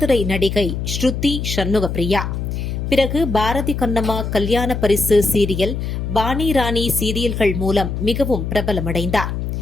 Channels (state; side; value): noise; left; hum, 3 dB below the sound